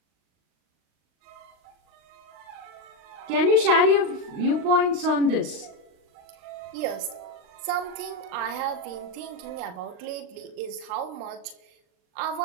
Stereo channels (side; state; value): left; late; 39 ms